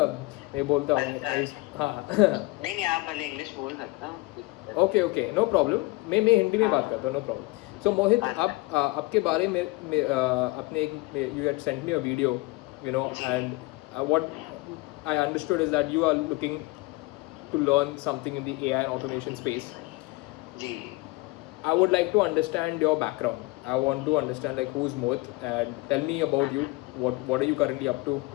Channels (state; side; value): quieter; right; 22.8 dB